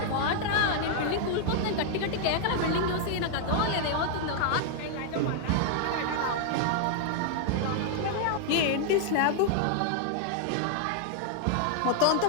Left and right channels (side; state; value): both; different; correlation 0.00